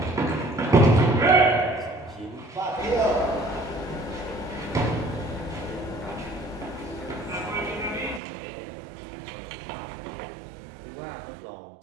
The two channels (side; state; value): left; drops out; at 8.2 s